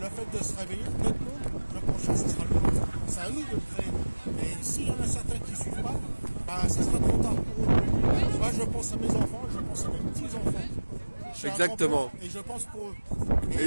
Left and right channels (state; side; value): inverted; both; correlation -1.00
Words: fait de se réveiller, notre monde, le prochain, ce sera le nôtre. C'est à nous de le créer. Et s'il y en a certains qui ne suivent pas, ce sera trop tard pour eux. Moi, je pense à mes enfants, je pense à mes petits-enfants. Exactement. Et je pense pour eux.